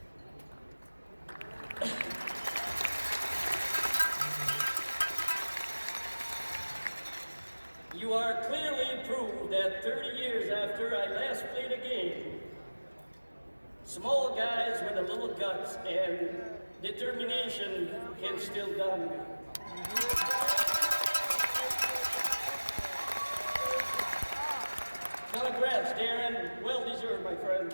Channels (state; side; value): inverted; both; correlation -1.00